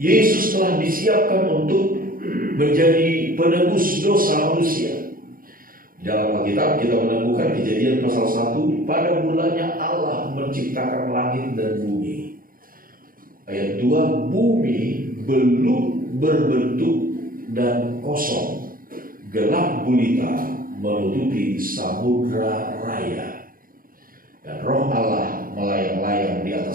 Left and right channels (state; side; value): late; left; 0.41 ms